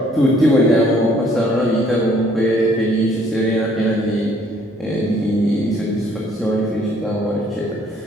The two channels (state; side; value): normal; both; correlation 0.61